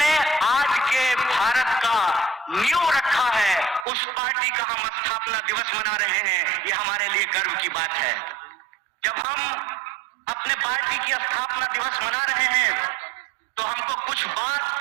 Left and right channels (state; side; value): drops out; left; at 3.9 s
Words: आज के भारत का नींव रखा है, उस पार्टी का हम स्थापना दिवस मना रहे हैं। ये हमारे लिए गर्व की बात है। जब हम अपने पार्टी की स्थापना दिवस मना रहे हैं तो हमको कुछ बात